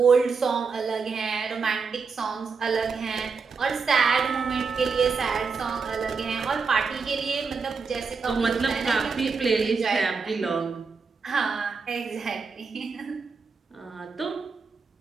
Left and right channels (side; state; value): left; quieter; 5.0 dB